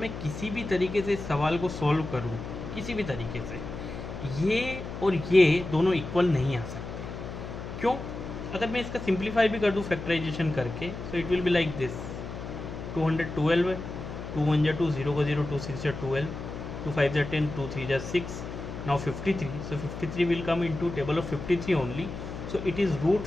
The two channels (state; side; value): noise; left; hum, 8 dB below the sound